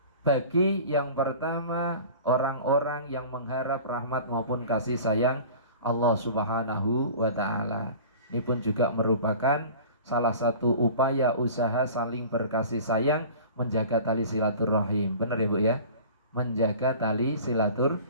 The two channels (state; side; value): inverted; both; correlation -0.40